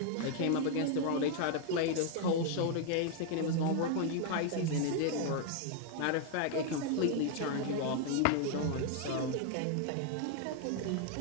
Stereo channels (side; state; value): both; different; correlation 0.00